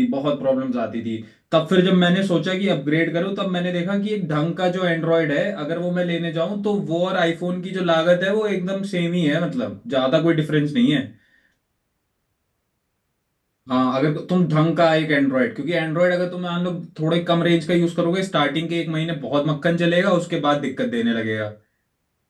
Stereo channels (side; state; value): both; identical; correlation 1.00